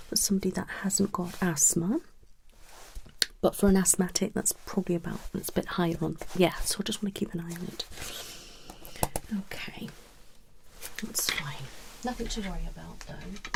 for somebody that hasn't got asthma. But for an asthmatic, that's probably it's a bit higher on. Yeah, so I just want to keep an eye on it. Okay, that's fine. Nothing to worry about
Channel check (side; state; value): both; identical; correlation 1.00